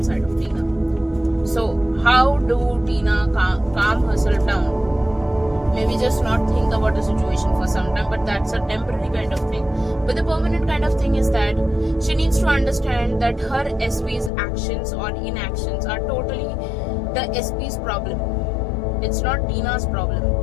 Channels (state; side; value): drops out; right; at 14.3 s